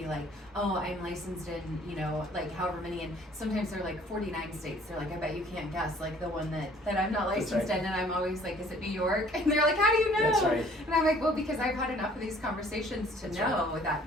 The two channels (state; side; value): normal; both; correlation 0.56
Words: like, oh, I'm licensed in, like however many, and sometimes they're like 49 states. They're like, I bet you can't guess, like the one that I'm not That's licensed right. in, and I'm always like, is it New York? And they're like, how do you know? That's right. And I'm like, well, because I've had enough of these conversations to That's know that